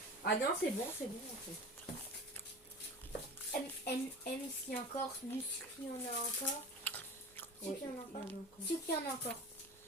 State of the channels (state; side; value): normal; both; correlation 0.34